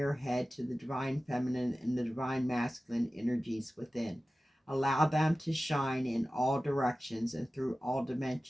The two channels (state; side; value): normal; both; correlation 0.96